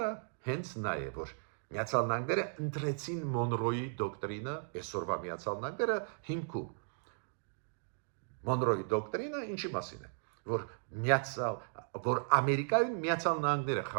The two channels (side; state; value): left; silent; digital silence